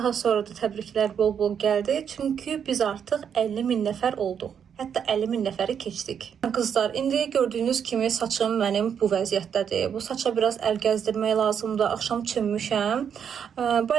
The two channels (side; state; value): left; quieter; 7.8 dB